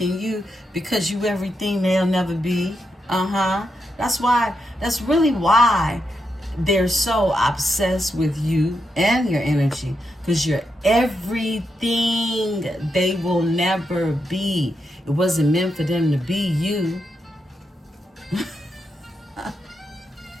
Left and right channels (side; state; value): both; normal; correlation 0.84